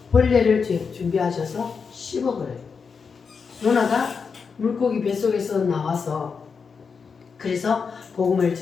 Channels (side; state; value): right; quieter; 5.6 dB